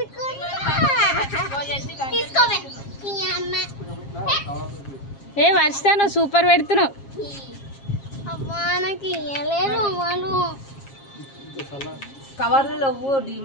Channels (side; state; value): right; late; 7.4 ms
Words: ఏ వర్షిత నువ్వు సూపర్ పెడుతున్నావు. నాకు ఇయ్యలేదు వాళ్ళు కవర్లలో